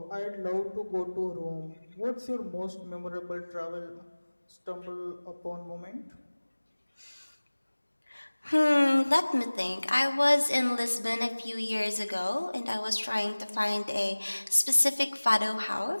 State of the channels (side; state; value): both; inverted; correlation -1.00